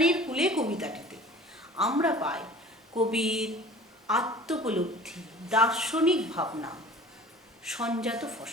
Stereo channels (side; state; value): both; normal; correlation 0.45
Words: কুলে কবিতাটিতে আমরা পাই কবির আত্মোপলব্ধি, দার্শনিক ভাবনা, সঞ্জাত